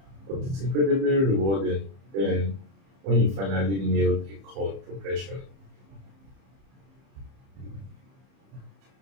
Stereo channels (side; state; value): left; late; 31 ms